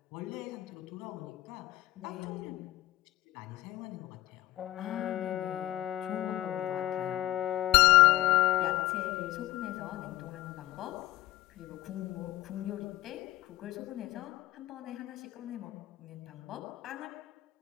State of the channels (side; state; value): right; quieter; 16.5 dB